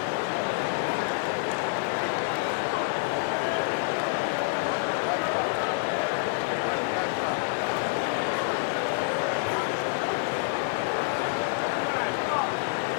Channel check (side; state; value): right; silent; 56 dB below the other